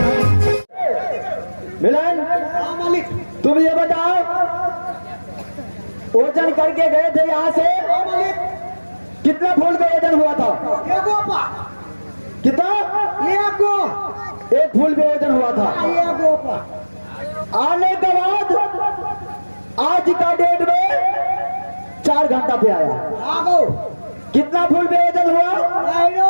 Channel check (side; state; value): both; inverted; correlation -1.00